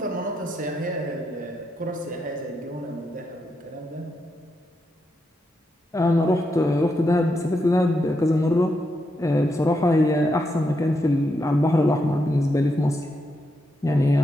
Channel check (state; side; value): normal; both; correlation 0.83